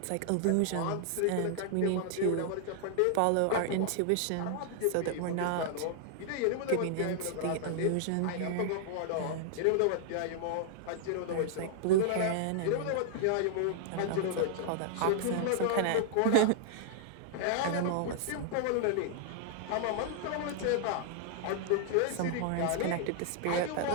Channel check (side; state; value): both; different; correlation -0.01